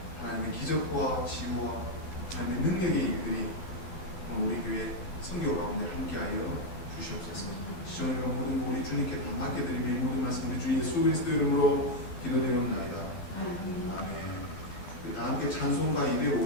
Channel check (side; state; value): right; late; 12 ms